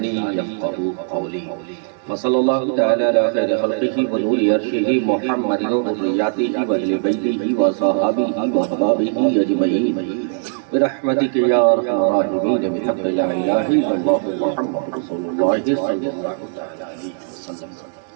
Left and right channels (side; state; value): left; silent; digital silence